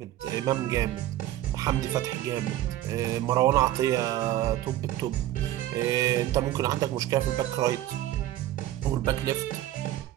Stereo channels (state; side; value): quieter; left; 14.0 dB